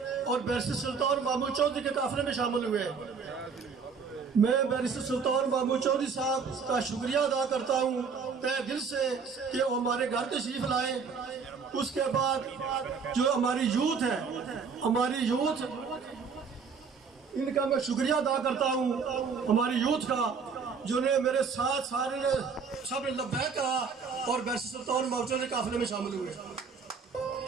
اور بیرسٹر سلطان محمود چودھری کے قافلے میں شامل ہوئے۔ میں بیرسٹر سلطان محمود چودھری صاحب کا شکریہ ادا کرتا ہوں تہ دل سے کہ وہ ہمارے گھر تشریف لائے۔ اس کے بعد جو ہماری یوتھ ہے، ہماری یوتھ، ان کا میں شکریہ ادا کرتا ہوں ہماری یوتھ کا، جو نے میرے ساتھ سارے نے سب نے لبیک کہا اور بیرسٹر سلطان محمود چودھری قافلے میں شامل ہوئے۔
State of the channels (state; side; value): quieter; left; 5.6 dB